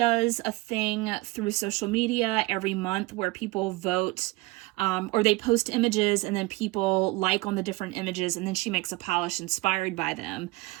a thing through social media every month where people vote, or they post images and then people like on the different images, and then she makes a polish inspired by them.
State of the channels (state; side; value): quieter; left; 21.5 dB